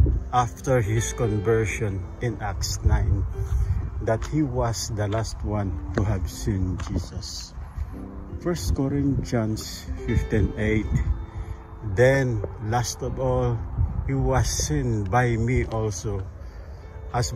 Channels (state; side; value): identical; both; correlation 1.00